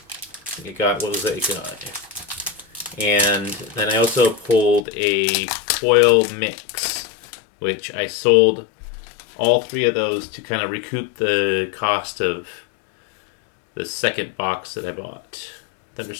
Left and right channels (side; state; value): right; drops out; at 4.8 s